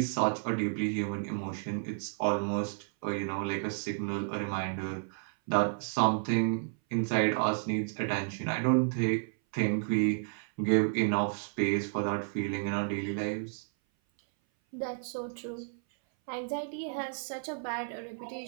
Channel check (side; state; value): left; silent; 57 dB below the other